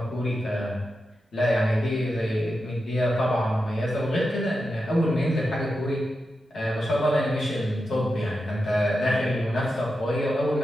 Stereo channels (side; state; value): both; normal; correlation 0.89